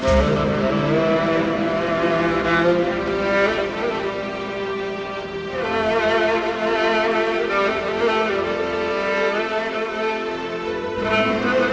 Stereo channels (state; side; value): identical; both; correlation 1.00